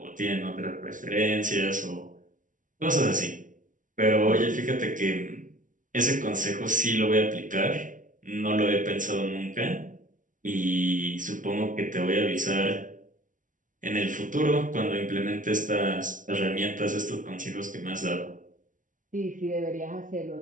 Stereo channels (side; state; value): left; late; 0.38 ms